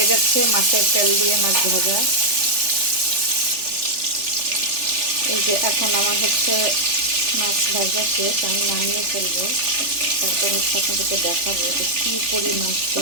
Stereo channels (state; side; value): late; left; 3.4 ms